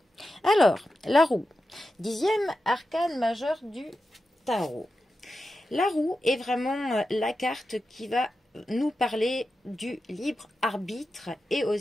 Alors, la roue, 10e arcane majeur du tarot. La roue est vraiment la carte qui va nous parler du libre arbitre et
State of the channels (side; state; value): both; normal; correlation 0.91